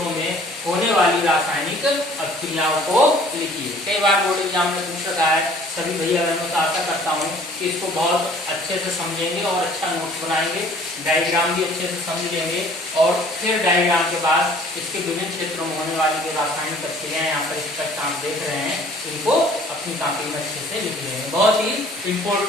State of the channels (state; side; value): normal; both; correlation 0.53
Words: में होने वाली रासायनिक अभिक्रियाओं को लिखिए। कई बार बोर्ड एग्जाम में पूछ रहा है। सभी भैया बहनों से आशा करता हूँ कि इसको बहुत अच्छे से समझेंगे और अच्छा नोट्स बनाएंगे, डायग्राम भी अच्छे से समझ लेंगे, और फिर डायग्राम के बाद इसके विभिन्न क्षेत्रों में होने वाली जो रासायनिक अभिक्रियाएं यहाँ पर इस तक आप देख रहे हैं इनको अपनी कॉपी में अच्छे से लिख लेंगे। बहुत ही